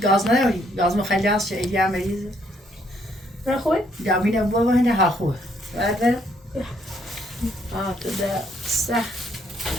غاز ناوي غاز مخلص اجي مجلس نه خوبه؟ جامين ابوه هنا هاخوه بعد تدا صح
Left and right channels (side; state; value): both; normal; correlation 0.69